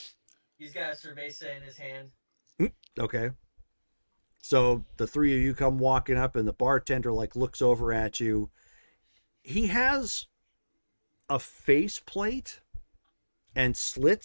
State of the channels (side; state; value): both; inverted; correlation -1.00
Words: He's got a cerveza in his hand. Okay. So the three of you come walking up, and the bartender like looks over at you. He has a face plate and